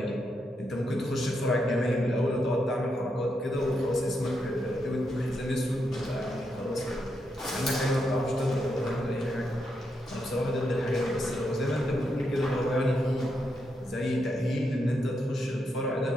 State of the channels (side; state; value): both; normal; correlation 0.82